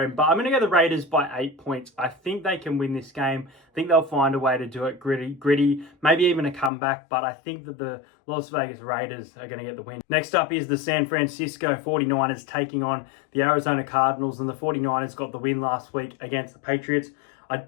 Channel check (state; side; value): drops out; right; at 6.7 s